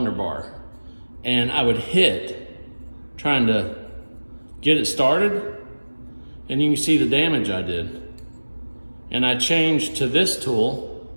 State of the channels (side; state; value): both; inverted; correlation -1.00